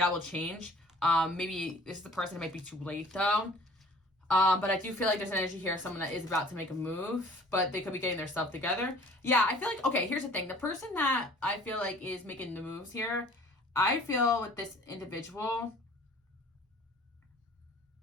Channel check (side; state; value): both; normal; correlation 0.50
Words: will change. Maybe this is the person who might be too late, though. But I do feel like there's an energy here of someone that is about to make a move, but they could be getting their stuff together. Yeah, I feel like, okay, here's the thing. The person that I feel like is making the moves here, I feel with this individual,